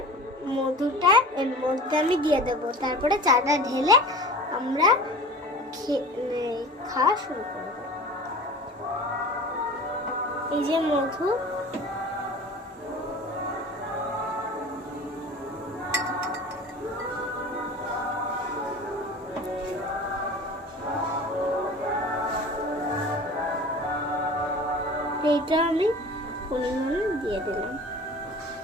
মধুটা এর মধ্যে আমি দিয়ে দেবো, তারপরে চাটা ঢেলে আমরা খাওয়া শুরু করব। এই যে মধু, এইটা আমি পরিমাণে দিয়ে দিলাম।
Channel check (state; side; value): normal; both; correlation 0.39